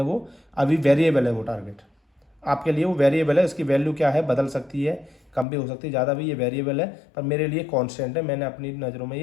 वो अभी वेरिएबल है। वो टारगेट आपके लिए वो वेरिएबल है, इसकी वैल्यू क्या है बदल सकती है, कम भी हो सकती है, ज़्यादा भी। ये वेरिएबल है पर मेरे लिए कांस्टेंट है, मैंने अपनी नज़रों में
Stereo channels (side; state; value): right; drops out; at 5.5 s